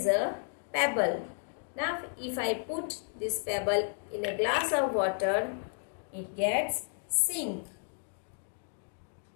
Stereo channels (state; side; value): silent; right; digital silence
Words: a pebble. Now if I put this pebble in a glass of water, it gets sink.